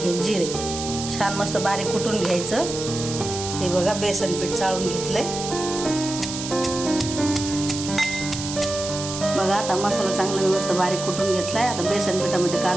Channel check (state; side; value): noise; right; hiss, 7 dB below the sound